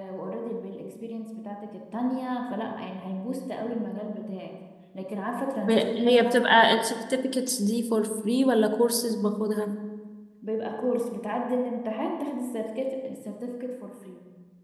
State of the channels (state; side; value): identical; both; correlation 1.00